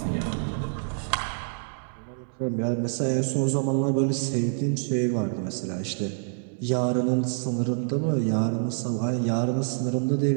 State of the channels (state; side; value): silent; left; 60 dB below the other